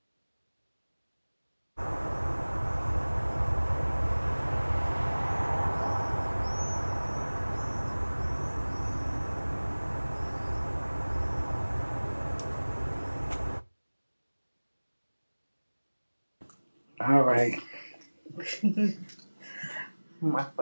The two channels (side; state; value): both; inverted; correlation -1.00